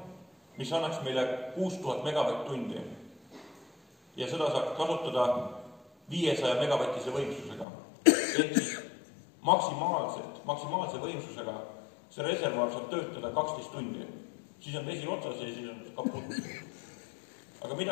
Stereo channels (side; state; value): right; drops out; at 7.7 s